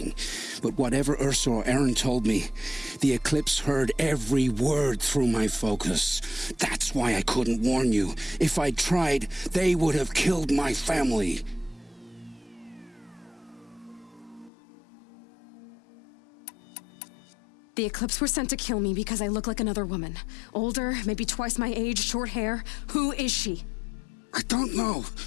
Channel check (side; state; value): right; drops out; at 14.5 s